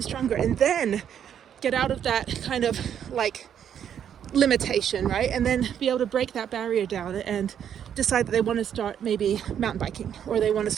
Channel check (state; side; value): quieter; left; 9.0 dB